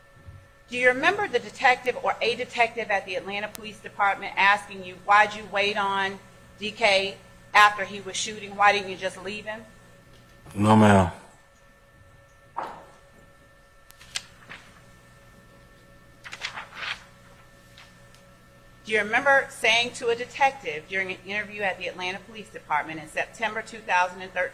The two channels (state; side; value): identical; both; correlation 1.00